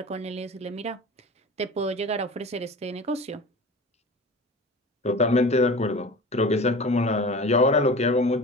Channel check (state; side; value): normal; both; correlation 0.36